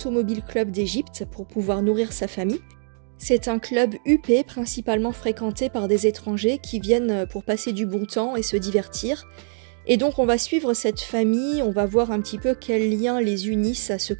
Club d'Égypte pour pouvoir nourrir sa famille. C'est un club huppé, principalement fréquenté par des étrangers qui viennent pour passer du bon temps et se divertir. Et donc on va suivre cette famille, on va voir un petit peu quels liens les unissent à ce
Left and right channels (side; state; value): left; silent; 63 dB below the other